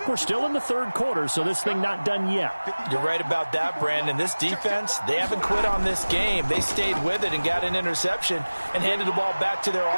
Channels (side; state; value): both; inverted; correlation -1.00